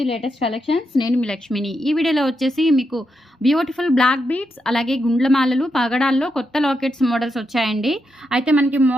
లేటెస్ట్ కలెక్షన్స్. నేను మీ లక్ష్మిని. ఈ వీడియోలో వచ్చేసి మీకు బ్యూటిఫుల్ బ్లాక్ బీడ్స్, అలాగే గుండ్లమాలలు, పగడాల్లో కొత్త లాకెట్స్ మోడల్స్ వచ్చాయండి. అయితే మనకి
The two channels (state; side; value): normal; both; correlation 0.84